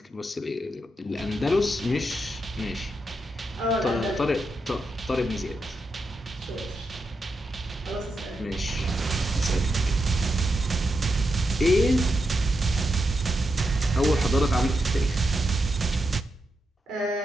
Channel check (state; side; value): normal; both; correlation 0.85